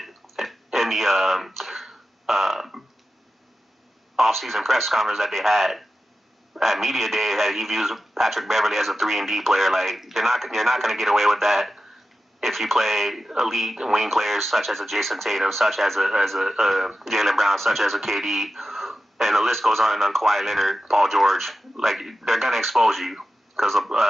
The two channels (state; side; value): normal; both; correlation 0.92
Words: in the off-season press conference that they had at media day that he views Patrick Beverley as a 3-and-D player. Like you're not going to get away with that if you play elite wing players such as a Jason Tatum, such as a Jaylen Brown, such as a KD, and the list goes on Kawhi Leonard, Paul George. Like they're going to expose you.